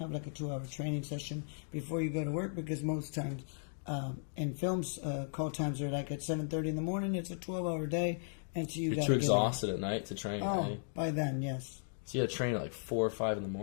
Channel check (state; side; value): silent; right; digital silence